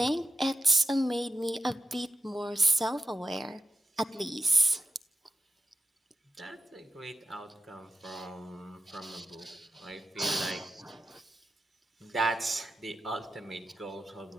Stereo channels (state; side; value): normal; both; correlation 0.91